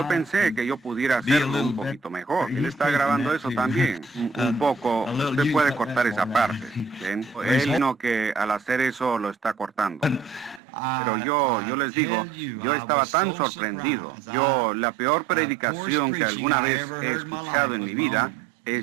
pensé que yo pudiera hacerlo un poquito mejor. Él está grabando eso también, un poco. Usted puede cortar esa parte. ¿Ven? Él no que al hacer eso lo está cortando. Pero yo les digo, yo estaba tan sorprendido. La peor predicación que alguna vez he escuchado en mi vida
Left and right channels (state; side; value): drops out; left; at 10.6 s